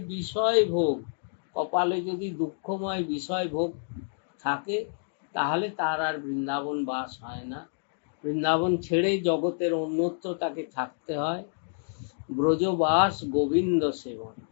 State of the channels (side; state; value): right; silent; digital silence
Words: বিষয় ভোগ। কপালে যদি দুঃখময় বিষয় ভোগ থাকে, তাহলে তার আর বৃন্দাবন বাস হয় না। বৃন্দাবন ছেড়ে জগতের অন্যত্র তাকে থাকতে হয়। ব্রজবাস গোবিন্দ সেবন,